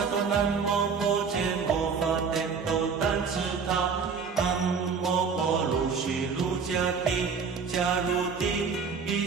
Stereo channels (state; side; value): quieter; left; 5.6 dB